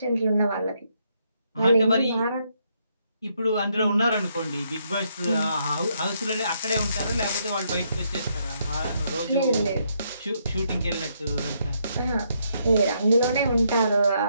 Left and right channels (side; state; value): both; inverted; correlation -0.75